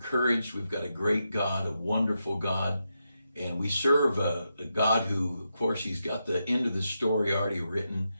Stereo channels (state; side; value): inverted; both; correlation -0.86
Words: We've got a great God, a wonderful God, and we serve a God who, of course, he's got the end of the story already written.